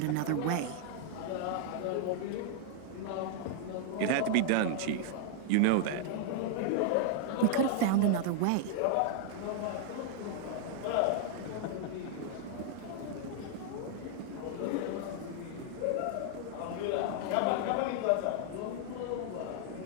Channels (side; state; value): both; different; correlation 0.00